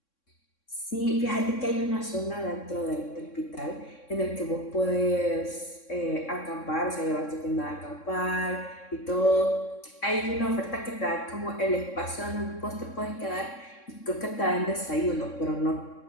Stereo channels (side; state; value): right; late; 3.6 ms